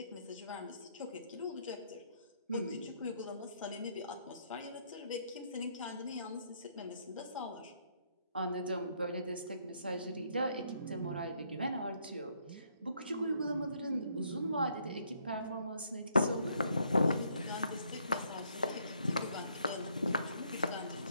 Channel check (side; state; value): both; inverted; correlation -0.70